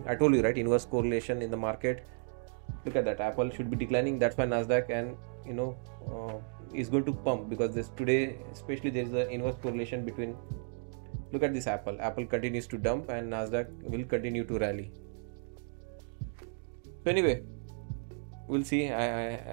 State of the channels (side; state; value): left; silent; 55 dB below the other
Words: I told you, right, inverse correlation in the market. Look at that, Apple should be declining. That's why Nasdaq and is going to pump, because this today especially there is an inverse correlation between. Look at this, Apple continues to dump, and Nasdaq will continue to rally. So anyway, we'll see.